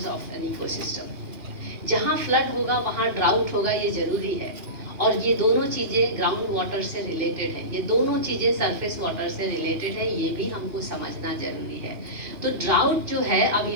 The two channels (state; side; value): late; left; 2.9 ms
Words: of an ecosystem. जहाँ फ्लड होगा वहाँ ड्राउट होगा, ये जरूरी है। और ये दोनों चीज़ें ग्राउंड वाटर से रिलेटेड है, ये दोनों चीज़ें सरफेस वाटर से रिलेटेड है, ये भी हमको समझना जरूरी है। तो ड्राउट जो है, अब